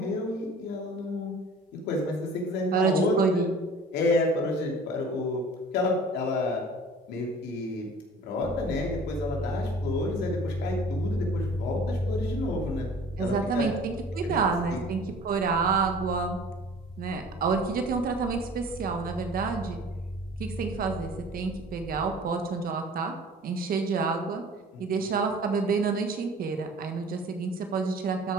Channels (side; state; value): both; normal; correlation 0.46